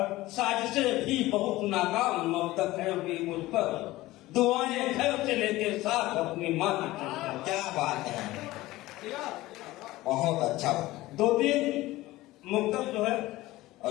साजिशें भी बहुत नाकाम मबदक है अभी मुझ पर, दुआएं घर से लेके साथ अपनी माँ की। क्या बात है, बहुत अच्छा। दो तीन मुक्तक जो है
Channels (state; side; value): quieter; right; 17.9 dB